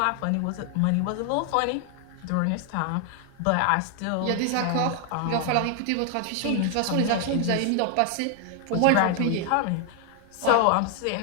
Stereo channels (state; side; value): different; both; correlation 0.00